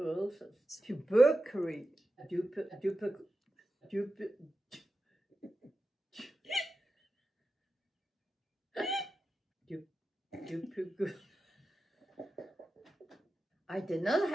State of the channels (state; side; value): normal; both; correlation 0.92